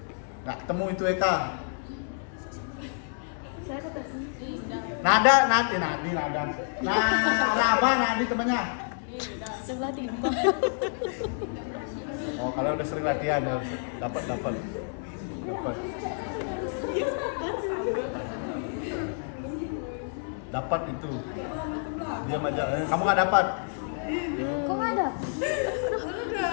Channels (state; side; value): silent; right; digital silence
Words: Nggak ketemu itu Eka. Nada. Nah, raba nadi temannya. Sebelah timbang. Oh, kalau udah sering latihan dapat. Dapat itu. Diam aja. Kamu nggak dapat. Kok nggak ada?